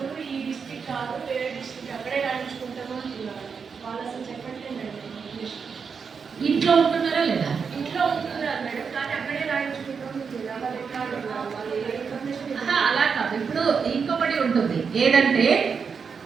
ఈ డిస్ట్రిక్ట్ కాదు వేరే డిస్ట్రిక్ట్ అక్కడే రాయించుకుంటామో వాళ్ళు అసలు చెప్పట్లేదు మేడం. ఇంట్లో ఉంటున్నారా లేదా? ఇంట్లో ఉంటున్నారు మేడం కానీ అక్కడే రాయించుకుంటాం, అలా కాదు. ఇప్పుడు ఇంకొకటి ఉంటుంది ఏదంటే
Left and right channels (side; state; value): left; quieter; 5.9 dB